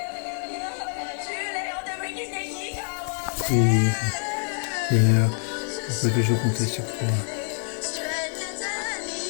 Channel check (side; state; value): right; silent; 57 dB below the other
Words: Oui, Seigneur, on peut toujours compter sur toi.